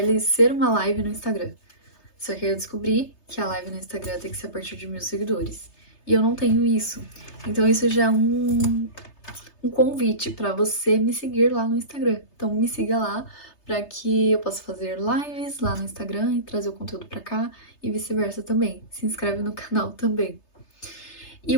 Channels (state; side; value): late; right; 3.3 ms